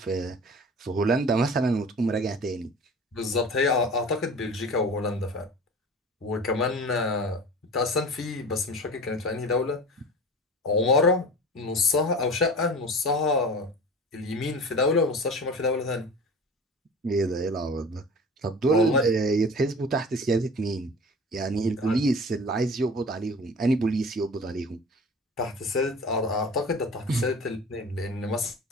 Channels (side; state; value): both; normal; correlation 0.38